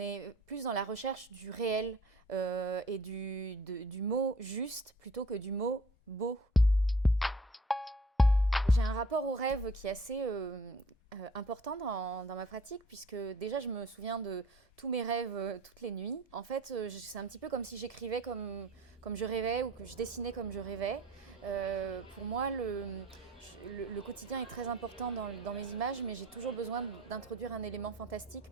plus dans la recherche du réel et du mot juste plutôt que du mot beau. J'ai un rapport au rêve qui est assez important dans ma pratique, puisque déjà je me souviens de tous mes rêves toutes les nuits. En fait, c'est un petit peu comme si j'écrivais comme je rêvais ou que je dessinais comme je rêvais. Pour moi, le quotidien est très important dans mes images, mais j'ai toujours besoin d'introduire un élément fantastique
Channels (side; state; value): both; normal; correlation 0.51